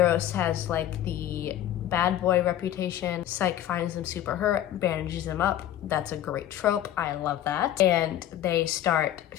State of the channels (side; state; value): right; quieter; 12.0 dB